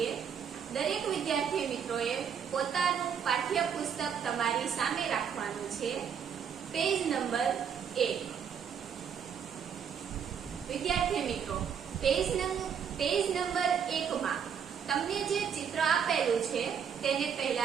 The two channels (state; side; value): quieter; left; 7.6 dB